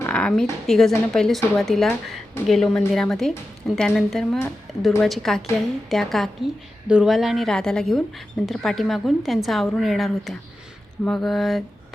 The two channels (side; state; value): both; normal; correlation 0.92